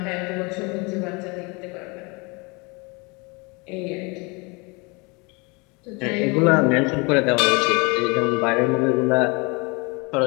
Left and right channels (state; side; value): quieter; right; 28.6 dB